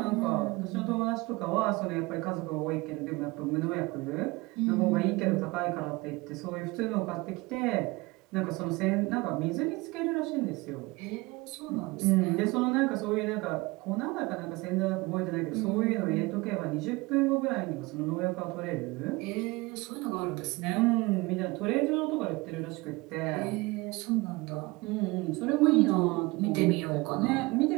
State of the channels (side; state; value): left; quieter; 23.3 dB